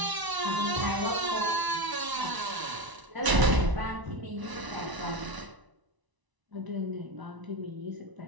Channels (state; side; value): late; left; 1.0 ms